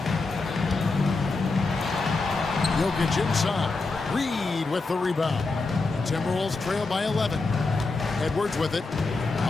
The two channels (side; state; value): right; quieter; 3.7 dB